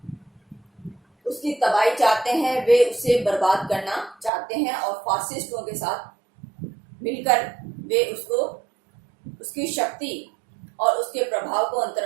उसकी तबाही चाहते हैं, वे उसे बर्बाद करना चाहते हैं और फासिस्टों के साथ मिलकर वे उसकी शक्ति और उसके प्रभाव को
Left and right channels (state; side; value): drops out; left; at 4.3 s